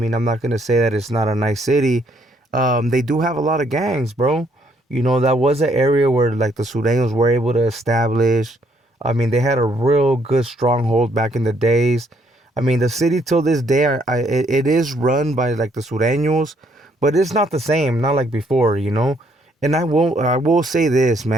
I'm not going to say that it's not a nice city, they do have a lot of gangs, bro. That was an area where like the Surenos were able to establish. I mean, they had a real good stronghold back in the days. I mean, the city till this day, it is run by like the Sureños, but it's not the same, not like before. And I will say this,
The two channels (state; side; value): normal; both; correlation 0.69